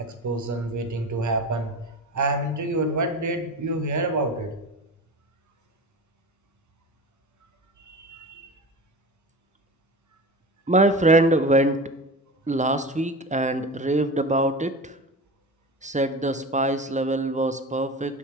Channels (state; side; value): normal; both; correlation 0.30